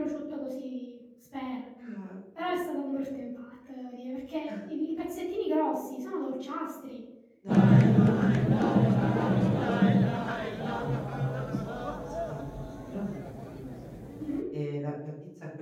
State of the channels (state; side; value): identical; both; correlation 1.00